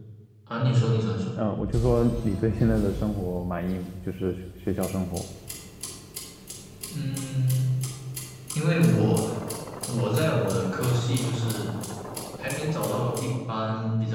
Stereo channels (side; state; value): both; identical; correlation 1.00